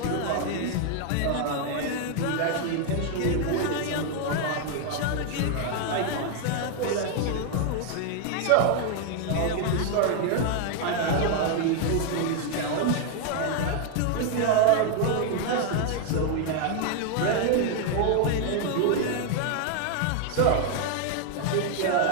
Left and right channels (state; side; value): different; both; correlation 0.00